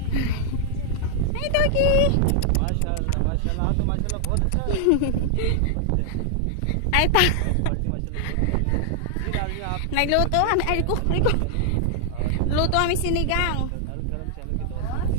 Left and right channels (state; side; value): different; both; correlation 0.00